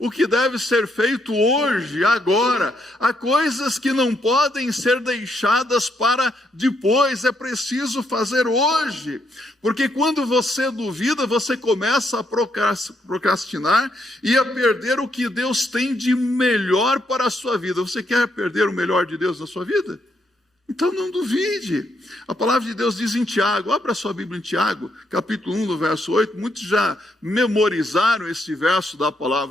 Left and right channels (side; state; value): both; normal; correlation 0.76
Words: que deve ser feito hoje, agora. Há coisas que não podem ser deixadas para depois, é preciso fazer hoje. Porque quando você duvida, você começa a procrastinar e a perder o que Deus tem de melhor para a sua vida. Você quer perder o melhor de Deus na sua vida? Então não duvide. A palavra de Deus diz em Tiago, abra sua Bíblia em Tiago, capítulo 1, no verso 8, muitos já memorizaram esse verso da